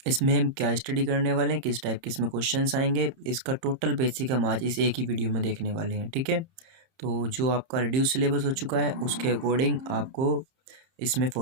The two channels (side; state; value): left; late; 30 ms